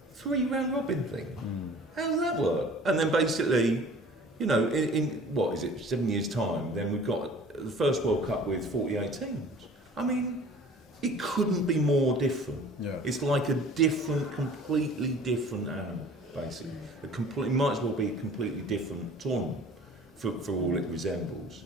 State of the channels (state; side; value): normal; both; correlation 0.47